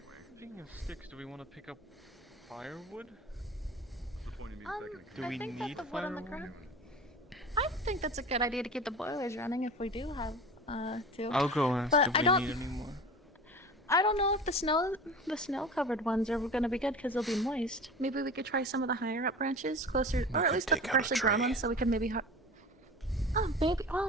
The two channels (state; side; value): normal; both; correlation 0.36